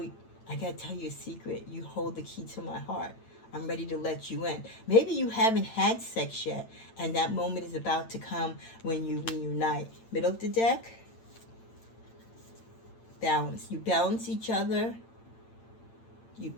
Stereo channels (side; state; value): right; late; 8.9 ms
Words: I got to tell you a secret. You hold the key to my heart. I'm ready to let you in. Maybe you haven't had sex yet, and that moment is about to come when you reunite. Middle of the deck. Balance. You balance each other. You